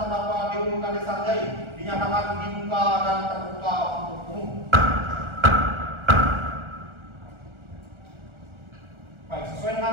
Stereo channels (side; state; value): left; late; 1.4 ms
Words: terdakwa Dewo Kade Sarjaya dinyatakan dibuka dan terbuka untuk umum. Baik, sesuai